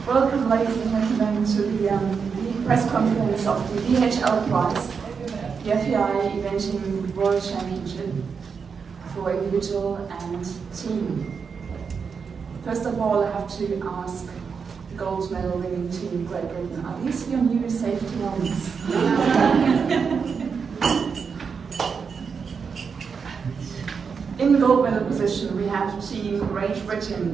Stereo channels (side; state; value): left; quieter; 5.9 dB